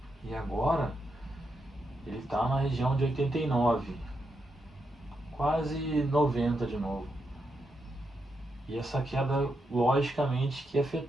e agora ele está na região de 89, quase 90 de novo. E essa queda, logicamente, que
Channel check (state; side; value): normal; both; correlation 0.83